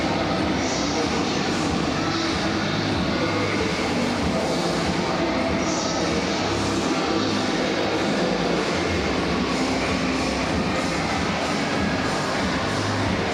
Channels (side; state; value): both; identical; correlation 1.00